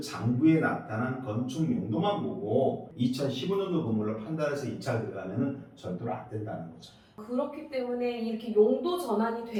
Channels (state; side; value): identical; both; correlation 1.00